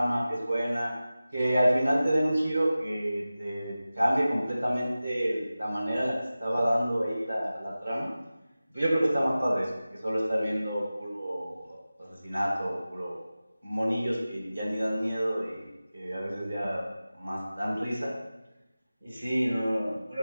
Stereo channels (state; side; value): inverted; both; correlation -0.96